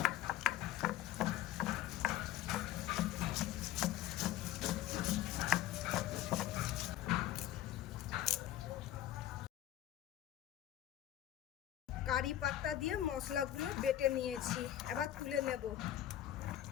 কারি পাতা দিয়ে মশলাগুলো বেটে নিয়েছি, এবার তুলে নেব।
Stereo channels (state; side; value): quieter; right; 12.6 dB